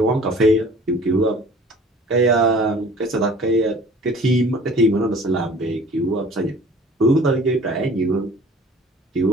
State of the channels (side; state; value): both; normal; correlation 0.48